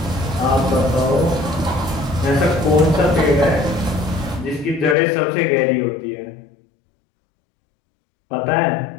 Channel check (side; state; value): right; drops out; at 5.0 s